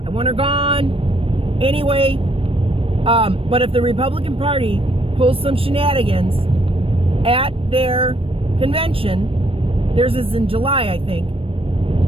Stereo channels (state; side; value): late; left; 0.27 ms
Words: I want her gone. Anyway, but if the Republican Party pulls some shenanigans at their convention, theirs is in July, I think,